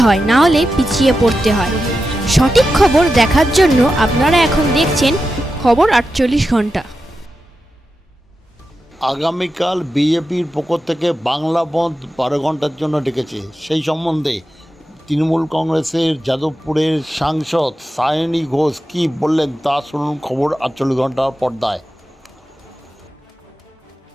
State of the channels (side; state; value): both; normal; correlation 0.90